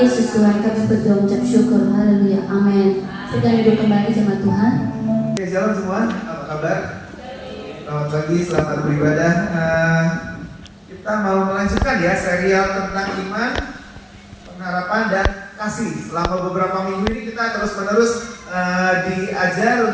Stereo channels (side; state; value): both; identical; correlation 1.00